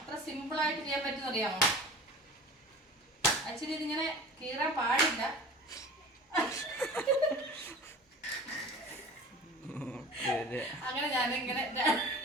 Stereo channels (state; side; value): normal; both; correlation 0.38